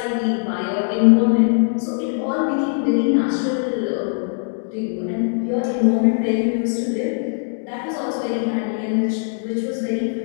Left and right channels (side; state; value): right; silent; 65 dB below the other